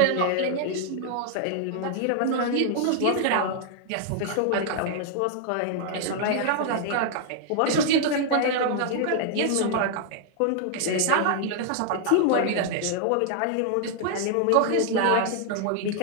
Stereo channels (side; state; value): both; different; correlation 0.00